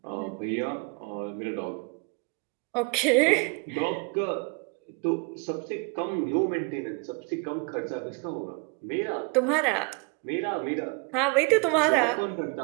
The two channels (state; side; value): quieter; left; 33.0 dB